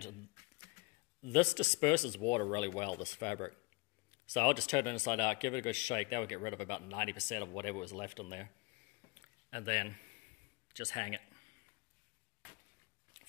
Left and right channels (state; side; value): quieter; right; 27.1 dB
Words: this disperses water really well, this fabric. So I'll just turn it inside out, give it a good shake. That would get rid of about 90% of whatever was left in there. And then just hang it